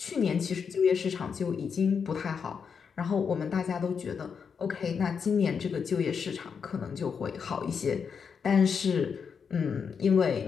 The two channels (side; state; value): right; quieter; 6.3 dB